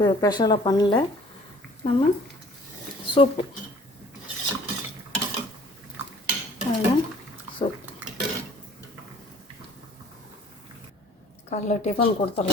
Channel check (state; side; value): normal; both; correlation 0.53